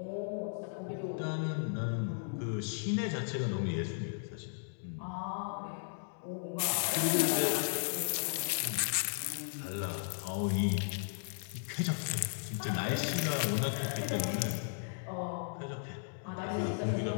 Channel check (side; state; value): right; silent; digital silence